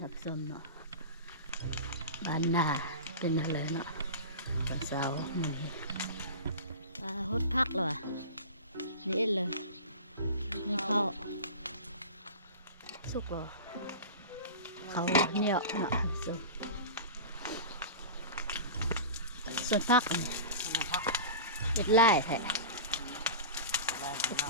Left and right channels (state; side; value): inverted; both; correlation -0.31